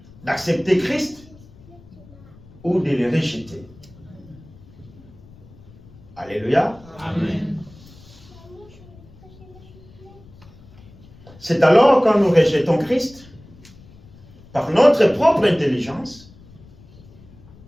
d'accepter Christ ou de le rejeter. Alléluia. Amen. C'est alors quand nous rejetons Christ, par notre propre intelligence,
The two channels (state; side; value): noise; left; rumble, 23 dB below the sound